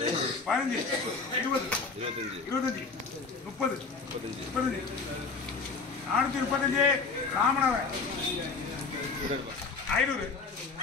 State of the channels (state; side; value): quieter; right; 4.5 dB